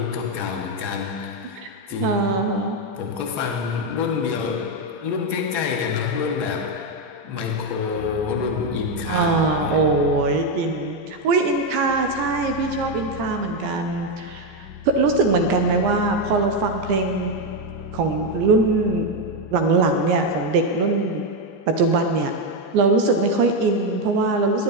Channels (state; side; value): late; left; 15 ms